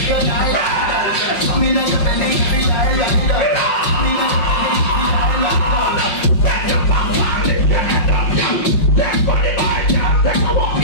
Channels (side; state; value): right; late; 5.5 ms